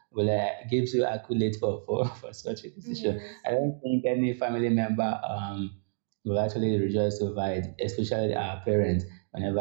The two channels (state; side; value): silent; left; digital silence